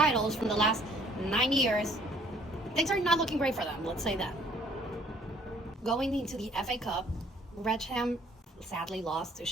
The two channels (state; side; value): normal; both; correlation 0.59